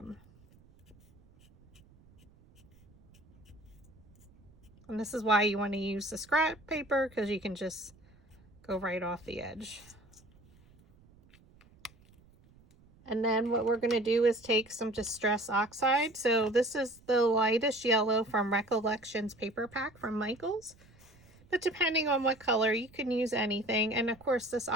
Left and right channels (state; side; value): noise; right; rumble, 27 dB below the sound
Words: And this is why you want to use the scrap paper, because you can just go right off the edge. And then what we're going to do is take some Distress Oxide. So this is the lightest yellow from Recollections paper pack from Michaels. But depending on what color, you can use anything. And of course, this